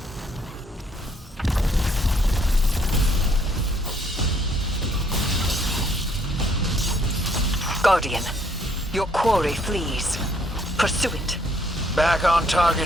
Guardian, your quarry flees. Pursue it. Back on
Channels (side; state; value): both; normal; correlation 0.66